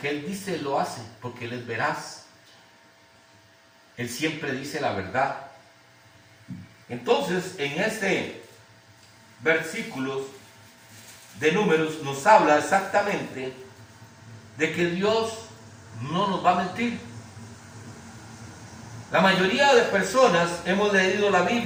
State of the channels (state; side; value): identical; both; correlation 1.00